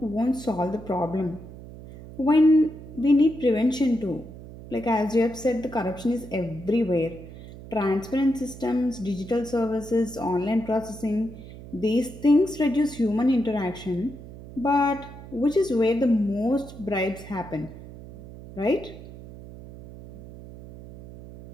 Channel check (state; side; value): noise; right; hum, 15 dB below the sound